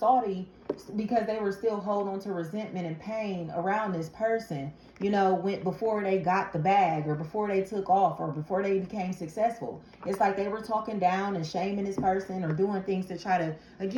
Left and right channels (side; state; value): both; identical; correlation 1.00